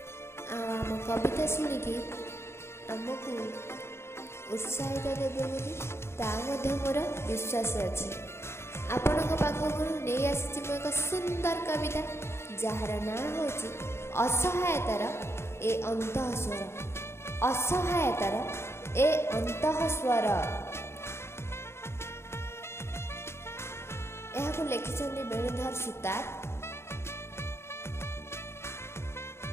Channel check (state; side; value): late; right; 0.12 ms